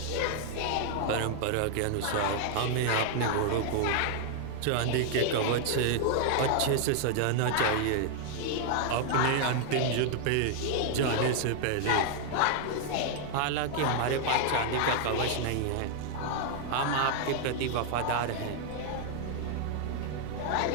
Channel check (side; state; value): both; different; correlation 0.00